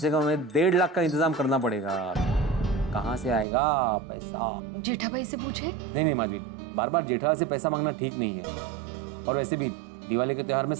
कम 1.5 लाख का इंतजाम करना पड़ेगा। कहाँ से आएगा पैसा? जेठा भाई से पूछे। नहीं माधवी, बार बार जेठा से पैसा मांगना ठीक नहीं है, और वैसे भी दिवाली के त्योहार में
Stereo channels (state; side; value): drops out; left; at 3.5 s